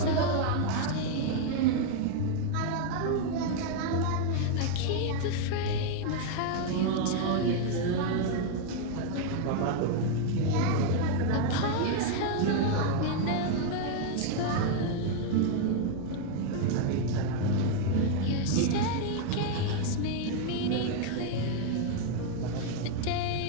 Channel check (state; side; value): different; both; correlation 0.00